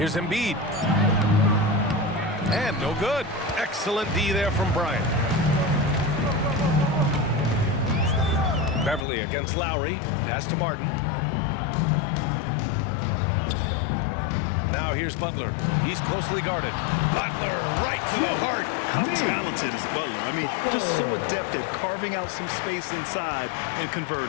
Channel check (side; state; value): right; drops out; at 9.1 s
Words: Embiid. And no good. Excellent D there from Bryant. Beverly against Lowry. Pass to Martin. Now here's Butler. He's closely guarded. Butler right to the heart. How talented is Butler? I mean, just so adept at carving out some space inside and